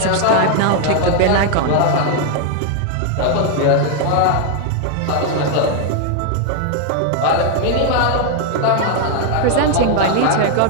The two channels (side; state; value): both; different; correlation 0.00